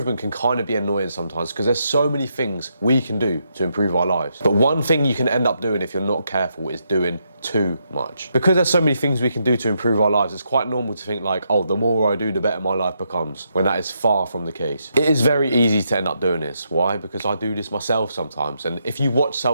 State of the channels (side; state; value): both; inverted; correlation -0.80